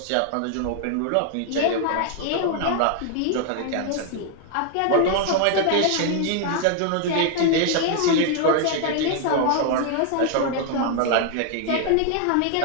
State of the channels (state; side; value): different; both; correlation 0.00